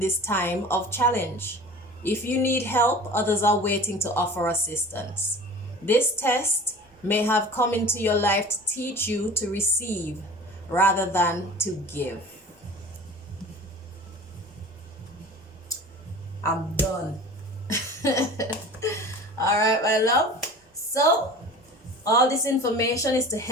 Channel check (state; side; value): normal; both; correlation 0.40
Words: time of challenge. If you need help, others are waiting to offer assistance. This test may have come into your life to teach you to receive rather than to give. I'm done. All right, my love. So, all this information is to